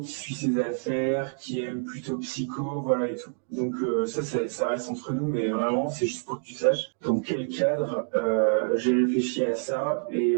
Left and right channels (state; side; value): silent; left; digital silence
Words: suit ses affaires, qui aime plutôt psycho, voilà et tout. Donc ça reste entre nous, mais vraiment c'est juste pour que tu saches dans quel cadre j'ai réfléchi à ça et